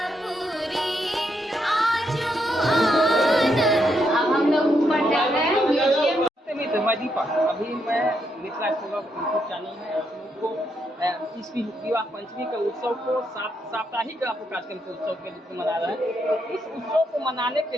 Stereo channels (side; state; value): both; normal; correlation 0.79